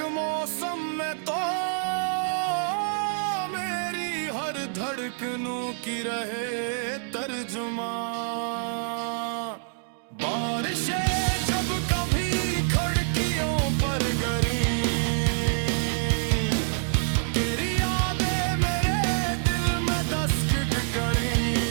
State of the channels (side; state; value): left; silent; digital silence